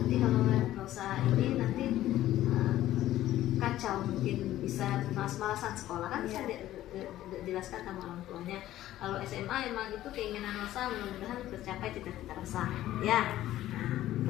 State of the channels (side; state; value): right; quieter; 14.0 dB